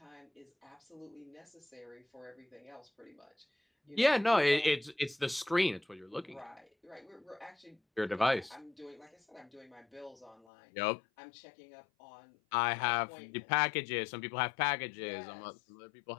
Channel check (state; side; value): drops out; right; at 10.5 s